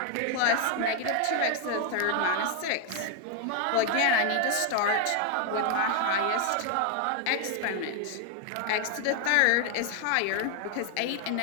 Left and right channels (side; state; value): both; different; correlation 0.01